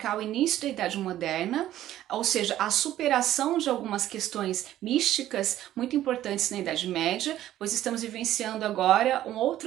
o início da Idade Moderna, ou seja, a superação de algumas questões místicas muito importantes na Idade Média, pois estamos vivenciando agora um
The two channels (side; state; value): left; quieter; 13.1 dB